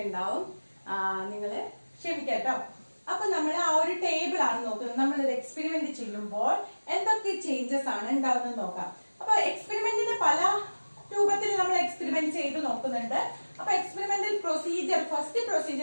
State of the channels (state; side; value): inverted; both; correlation -1.00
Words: ഉണ്ടാവും, നിങ്ങള് ക്ഷമിക്കാട്ടോ. അപ്പൊ നമ്മൾ ആ ഒരു ടേബിൾ ആണ് നോക്കുന്നത്. നമ്മളൊരു എക്സ്പെരിമെന്റ് ചെയ്യുമ്പോൾ എന്തൊക്കെ ചേഞ്ചസ് ആണ് ഉണ്ടാവുന്നത് നോക്കാം. അപ്പൊ എക്സ്പെരിമെന്റിന് പല രൂപത്തിൽ നമ്മൾ എക്സ്പെരിമെന്റ് ചെയ്ത് നോക്കുന്നുണ്ട്. അപ്പൊ എക്സ്പെരിമെന്റൽ പ്രൊസീജിയർ, ഫസ്റ്റ്